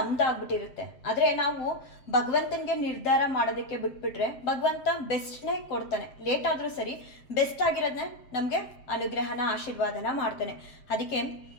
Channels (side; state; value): right; late; 7.6 ms